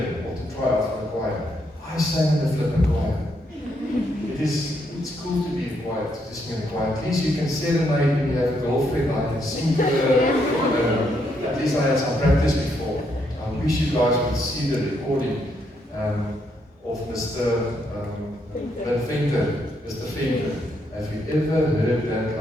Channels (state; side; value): normal; both; correlation 0.76